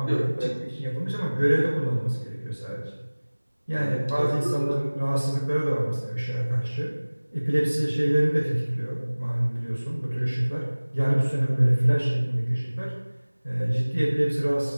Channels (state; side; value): inverted; both; correlation -1.00